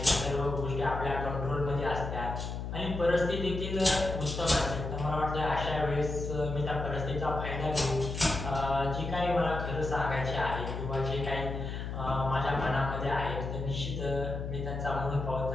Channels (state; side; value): noise; left; hum, 5 dB below the sound